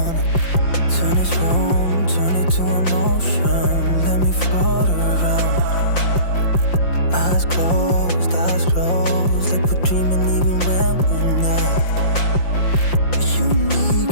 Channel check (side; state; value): right; late; 5.8 ms